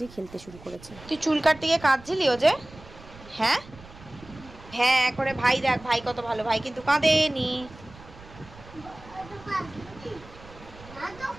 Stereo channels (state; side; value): noise; right; rumble, 19 dB below the sound